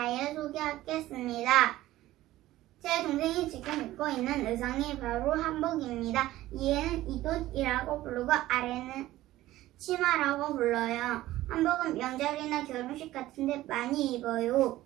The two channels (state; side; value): quieter; left; 15.7 dB